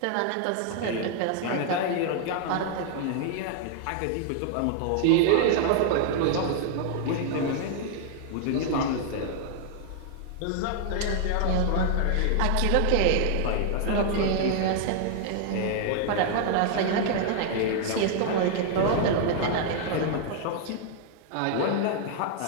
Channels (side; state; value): both; different; correlation 0.00